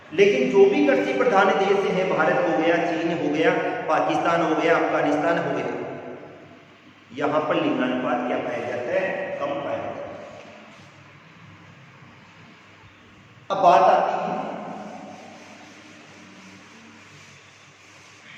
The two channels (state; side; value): identical; both; correlation 1.00